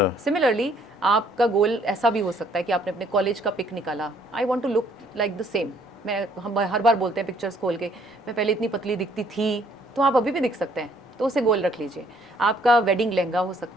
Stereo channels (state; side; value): normal; both; correlation 0.63